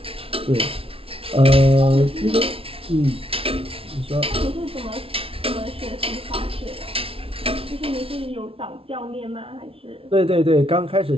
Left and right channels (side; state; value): left; late; 0.26 ms